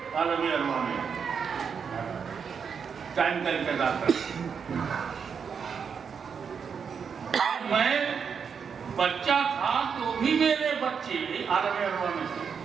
عالم ارواح میں ٹائم کا انتظار کر۔ میں بچہ تھا تو بھی میرے بچے عالم ارواح میں تھے،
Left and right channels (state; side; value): quieter; left; 6.5 dB